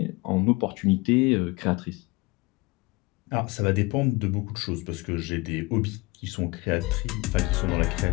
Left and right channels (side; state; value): right; quieter; 23.6 dB